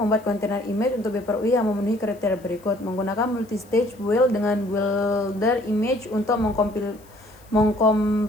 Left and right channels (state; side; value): noise; left; hiss, 28 dB below the sound